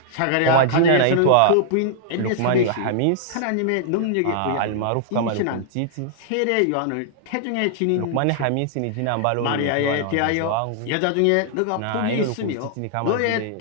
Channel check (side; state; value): both; different; correlation -0.01